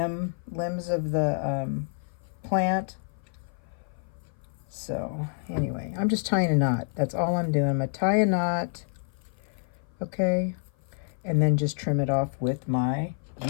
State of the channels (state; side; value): silent; right; 55 dB below the other